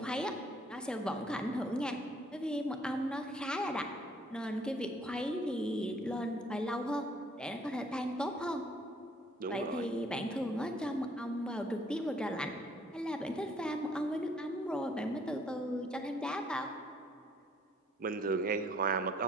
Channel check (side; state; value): both; normal; correlation 0.63